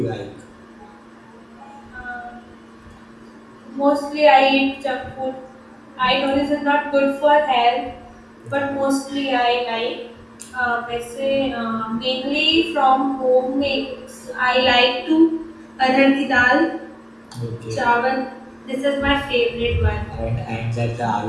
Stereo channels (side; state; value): both; identical; correlation 1.00